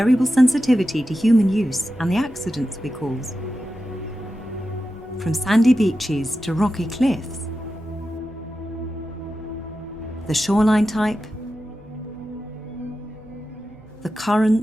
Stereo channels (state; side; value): noise; left; hum, 28 dB below the sound